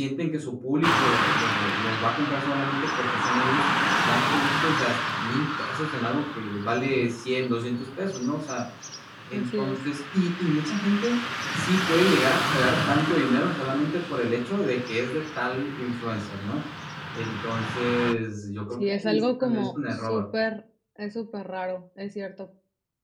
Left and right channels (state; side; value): identical; both; correlation 1.00